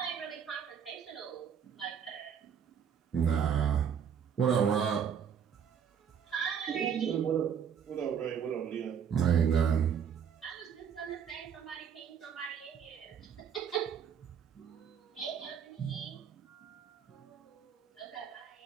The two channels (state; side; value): quieter; left; 7.8 dB